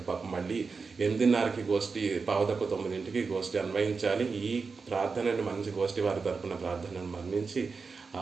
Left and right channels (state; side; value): quieter; left; 4.8 dB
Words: పాపం మళ్ళీ 8:30కి గోష్ఠి, 8:45కి గోష్ఠి అన్వయించాలి. ఈ ప్రార్థనని మంచి గోష్ఠి వారి తరపున ప్రార్థనను మన్నించి